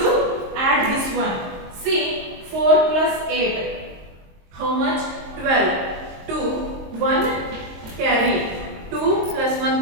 add this one. See, 4 plus 8. How much? 12. 2, 1 carry. 2 plus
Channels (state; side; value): late; left; 22 ms